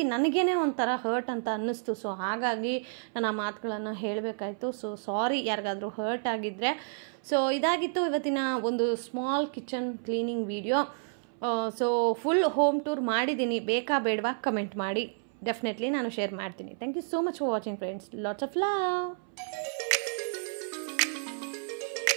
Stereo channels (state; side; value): silent; left; 57 dB below the other